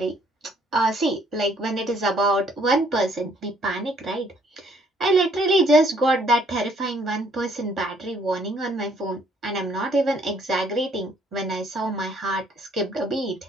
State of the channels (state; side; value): normal; both; correlation 0.64